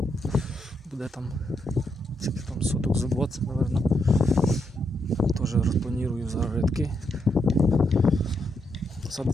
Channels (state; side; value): normal; both; correlation 0.80